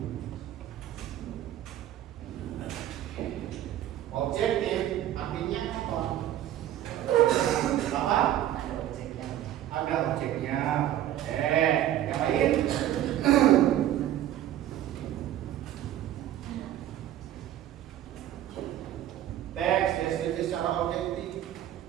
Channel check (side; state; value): left; quieter; 12.3 dB